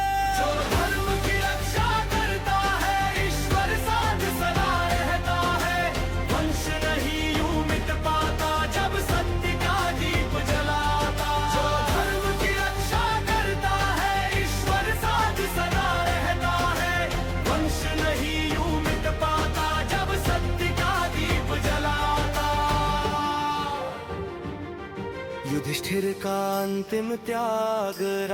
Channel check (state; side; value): identical; both; correlation 1.00